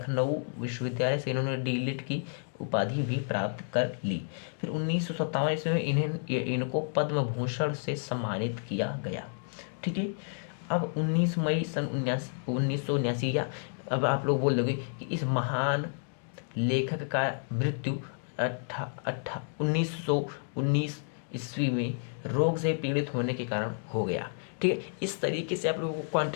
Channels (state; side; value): silent; right; digital silence